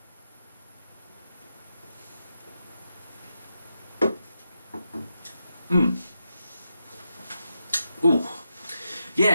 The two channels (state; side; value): inverted; both; correlation -0.86